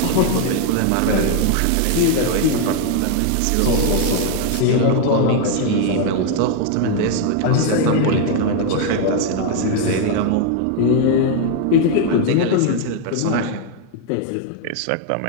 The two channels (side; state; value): both; different; correlation 0.01